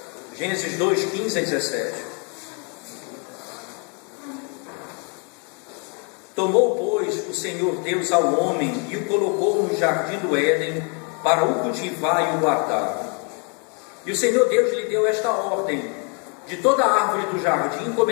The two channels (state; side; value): quieter; right; 36.8 dB